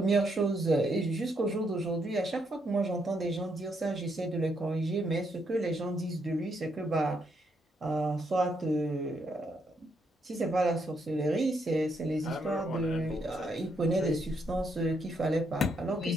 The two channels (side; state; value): both; normal; correlation 0.76